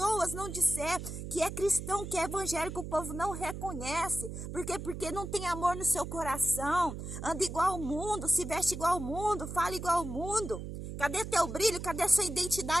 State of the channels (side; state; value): right; noise; hum, 8 dB below the sound